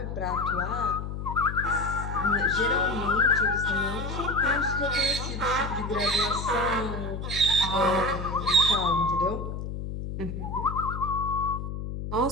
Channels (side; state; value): left; noise; hum, 5 dB below the sound